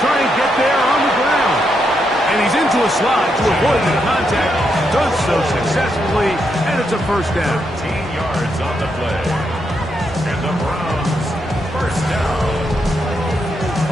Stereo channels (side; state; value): both; normal; correlation 0.81